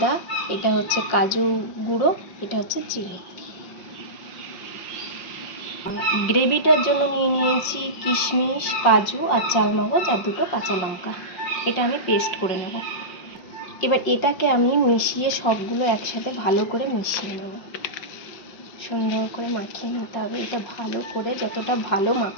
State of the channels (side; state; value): right; late; 5.6 ms